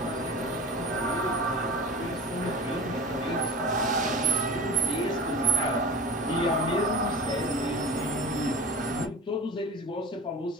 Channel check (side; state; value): both; normal; correlation 0.34